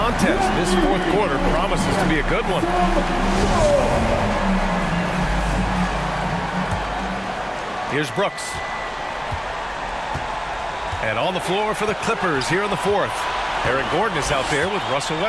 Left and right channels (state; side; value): identical; both; correlation 1.00